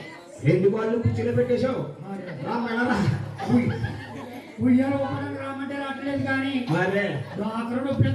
2 వాళ్ళు కూర్చొని పెట్టేశావు ఉయ్యాల ఉపయోగం రామంటే రావట్లేదు కానీ మరే డాక్టర్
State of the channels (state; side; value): identical; both; correlation 1.00